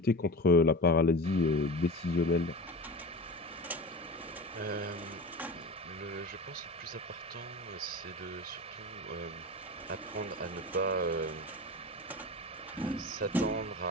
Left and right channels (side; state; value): both; normal; correlation 0.30